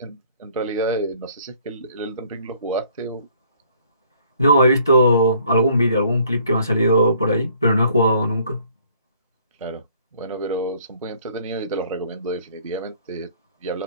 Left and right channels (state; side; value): inverted; both; correlation -0.59